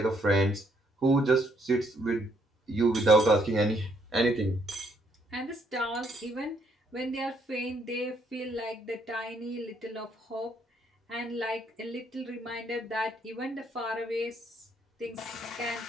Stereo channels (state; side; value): normal; both; correlation 0.71